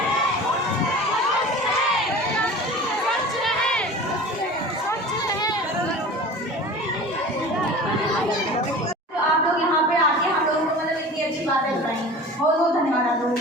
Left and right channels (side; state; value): both; normal; correlation 0.38